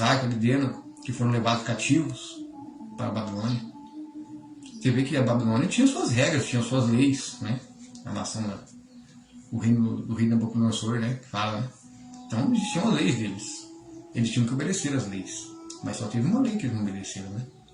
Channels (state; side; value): identical; both; correlation 1.00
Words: Abednego, que foram levados cativos para a Babilônia. Você vê que a Babilônia tinha suas regras, tinha suas leis, né? A nação, o reino do rei Nabucodonosor, né? Que fala, né? Então existiam as leis deles. Eles tinham que obedecer as leis. Mas só teve uma lei que eles não obedeceram, né?